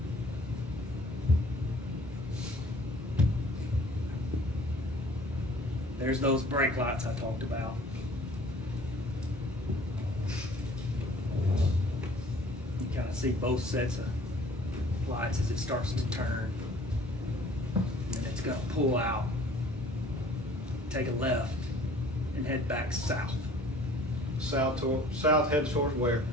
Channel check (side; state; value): both; normal; correlation 0.52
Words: There's those brake lights I talked about. You kind of see both sets of lights as it starts to turn. And it's going to pull out, take a left, and head back south. South heads towards where?